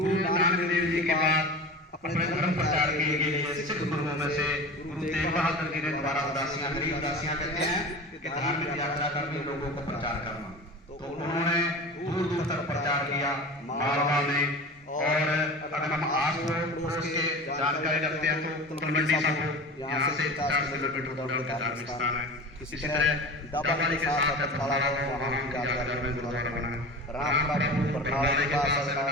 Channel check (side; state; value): both; normal; correlation 0.34